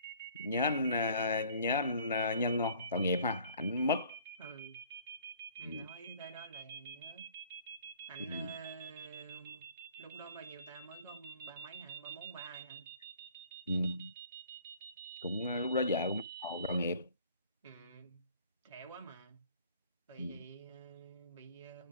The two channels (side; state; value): both; inverted; correlation -0.53